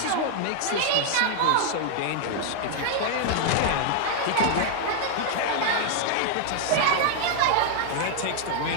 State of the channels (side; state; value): both; different; correlation 0.00